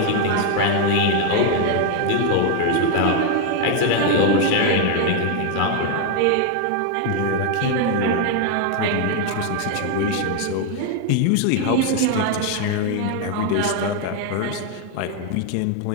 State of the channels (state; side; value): different; both; correlation 0.01